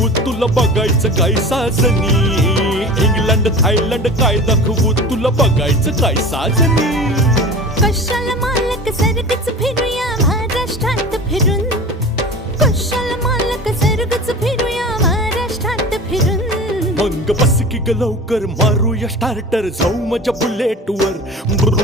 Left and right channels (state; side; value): normal; both; correlation 0.36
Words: तुला बघायचं काय साजनी, इंग्लंड थायलंड काय दाखवू तुला बघायचं काय साजनी. कशाला मालक सरगच फिरूया महाराष्ट्रात फिरून, कशाला मालक सरगच फिरूया महाराष्ट्रात फिरून. मग बस की ग लवकर मारूया स्टार्टर, जाऊ माझ्या बुलेटवर.